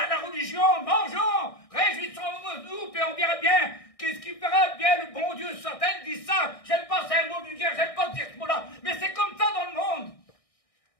la religion, mangeons, réjouissons-nous, puis on verra bien qu'est-ce qui fera bien le bon Dieu. Certains disent ça, j'aime pas, c'est un mot vulgaire, j'aime pas dire ce mot-là, mais c'est comme ça dans le monde.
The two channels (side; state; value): right; late; 1.6 ms